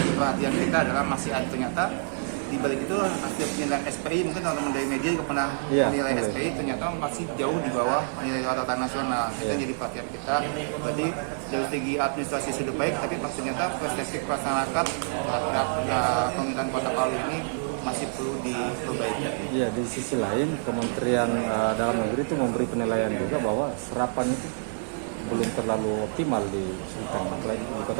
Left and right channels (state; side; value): silent; left; digital silence